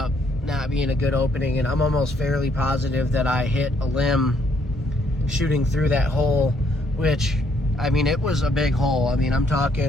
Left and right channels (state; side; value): normal; both; correlation 0.69